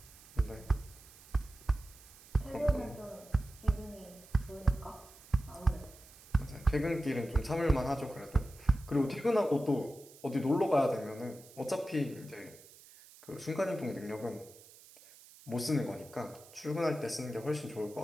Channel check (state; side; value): noise; right; hiss, 22 dB below the sound